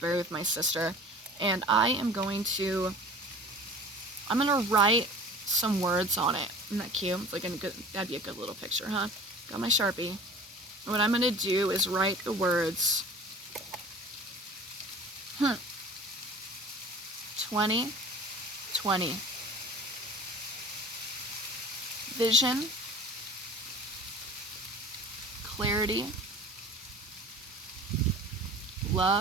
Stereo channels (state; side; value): normal; both; correlation 0.40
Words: with my sister, and I'm going to write some words on it. Isn't that cute? It's like that'd be a good little picture, huh? Got my Sharpie. And what I'm going to do is write the words 2020. Vision, clarity,